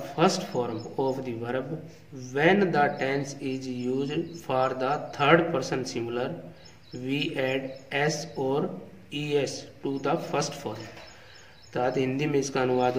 first form of the verb when the tense is used for the third person singular. We add s or es to the first form. अर्थात हिंदी में इसका अनुवाद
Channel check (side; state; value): both; identical; correlation 1.00